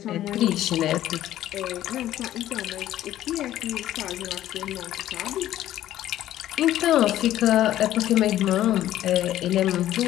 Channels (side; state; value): right; quieter; 13.1 dB